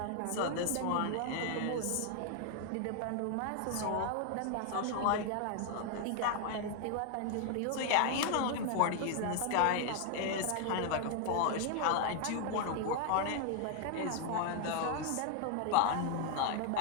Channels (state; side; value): different; both; correlation 0.00